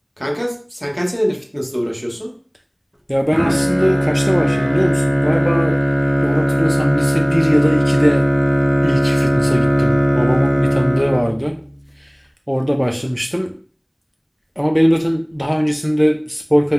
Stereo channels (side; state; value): both; identical; correlation 1.00